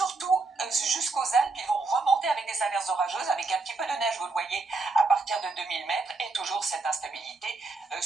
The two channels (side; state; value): left; quieter; 3.8 dB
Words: jusqu'aux Alpes, ils vont remonter avec des averses orageuses, avec un petit peu de neige, vous le voyez, à partir de 2000 mètres, et toujours cette instabilité